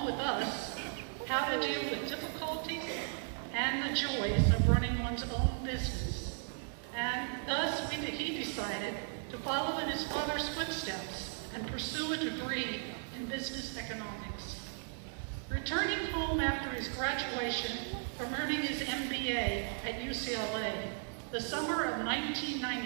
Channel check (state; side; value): silent; left; 54 dB below the other